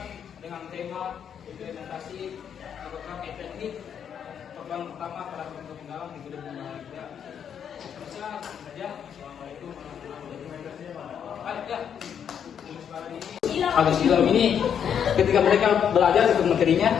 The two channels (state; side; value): quieter; right; 8.2 dB